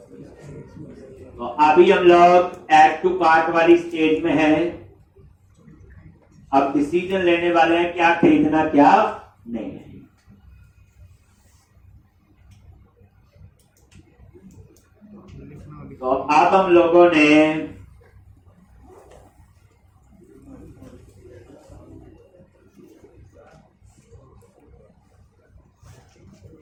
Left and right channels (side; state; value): both; identical; correlation 1.00